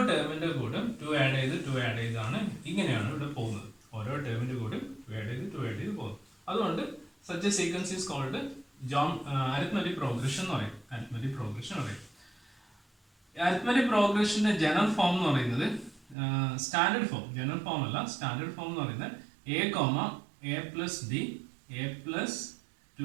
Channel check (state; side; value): drops out; left; at 16.2 s